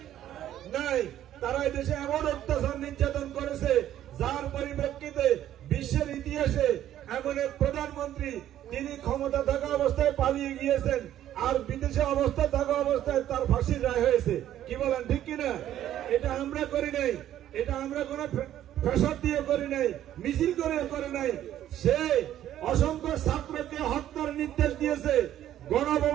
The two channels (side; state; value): left; quieter; 11.9 dB